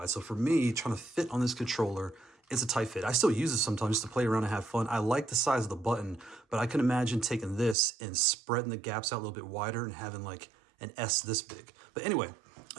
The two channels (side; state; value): left; drops out; at 7.8 s